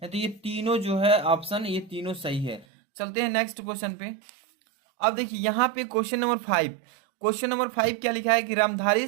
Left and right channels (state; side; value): drops out; left; at 2.7 s